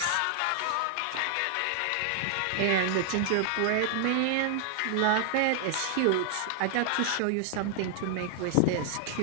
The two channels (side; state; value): both; different; correlation 0.00